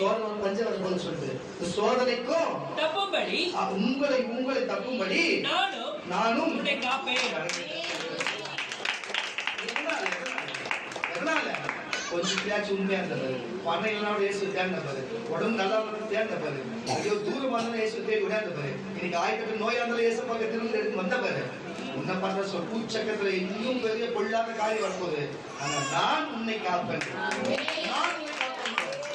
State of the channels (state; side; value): identical; both; correlation 1.00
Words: பஞ்சம் வரும்போது சொல்லுது இந்த சோதனைக்கும் தப்பும்படி உங்களை தப்பும்படி நானும் உன்னை காப்பேன். எதனால கொஞ்சம் பேச்சு உண்மையா இருந்தது பணம் இல்லைனா இயேசு தேர்ந்த பாரு உடம்பு நல்லா தேர்ந்த பாரு ஐயோ தூரமா இருந்தாலும் இயேசு தேடி விடாத பாரு இன்னைக்கு ஆயிரத்தி நோயா இருந்தாலும் இயேசு பக்கம் திரும்ப எடுத்து வந்த பாரு உன்னை பண்ற சொல் பூச்சக்கத்துல இன்னும் பெரிய பொல்லாத காரியம் வரப்போகுது. ஆனா நான் உன்னை காப்பேன்.